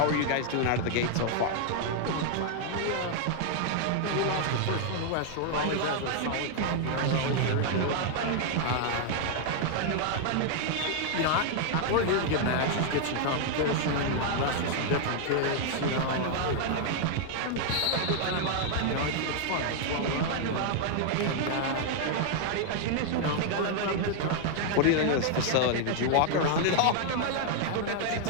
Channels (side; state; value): both; different; correlation 0.00